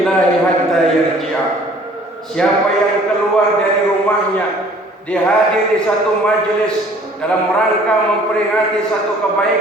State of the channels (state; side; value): normal; both; correlation 0.54